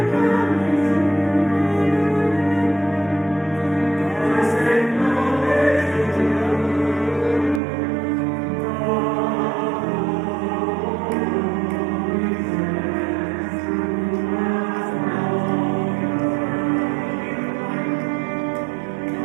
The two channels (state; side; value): drops out; left; at 7.6 s